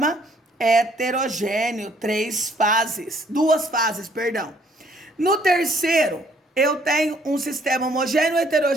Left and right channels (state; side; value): normal; both; correlation 0.63